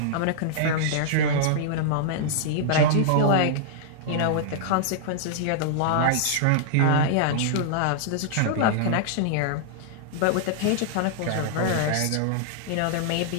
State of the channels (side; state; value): both; different; correlation -0.01